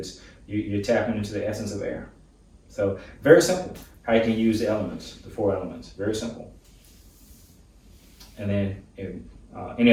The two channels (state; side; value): identical; both; correlation 1.00